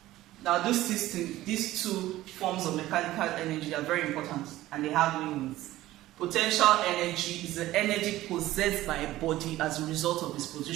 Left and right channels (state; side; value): quieter; left; 15.8 dB